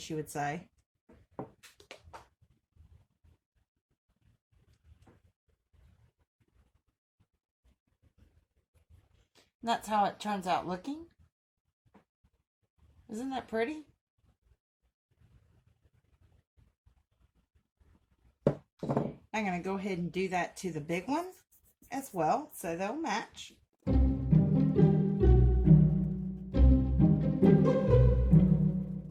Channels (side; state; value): both; identical; correlation 1.00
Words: you would say. That's how it turns out looking. Isn't that pretty? I'm going to go ahead and do that to the big one as well, so they'll match. I'm